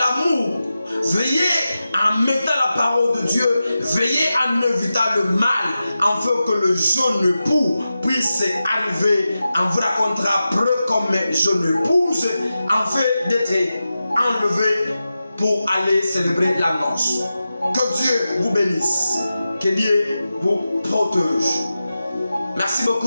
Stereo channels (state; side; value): inverted; both; correlation -0.92